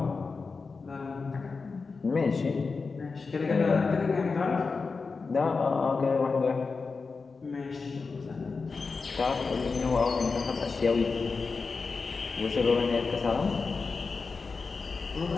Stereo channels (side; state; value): right; quieter; 4.5 dB